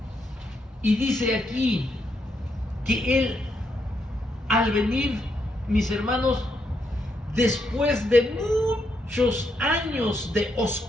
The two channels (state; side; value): normal; both; correlation 0.78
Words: Y dice aquí que Él, al venir, mis hermanos, después de muchos años de